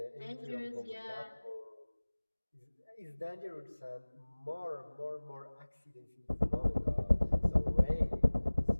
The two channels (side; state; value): both; inverted; correlation -1.00